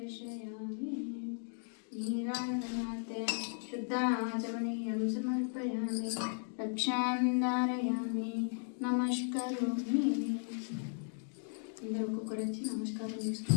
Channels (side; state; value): right; silent; 54 dB below the other